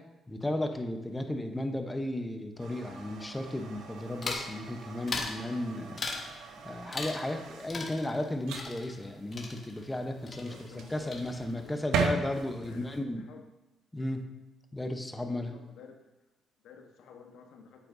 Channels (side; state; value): both; normal; correlation 0.85